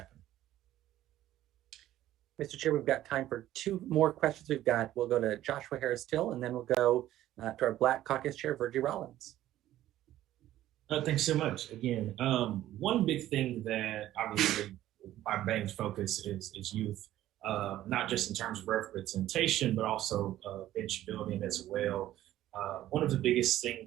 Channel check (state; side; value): quieter; left; 13.7 dB